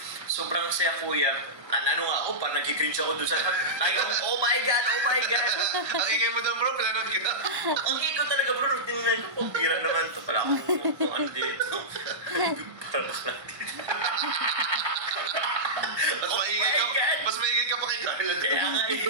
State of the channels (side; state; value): left; late; 1.6 ms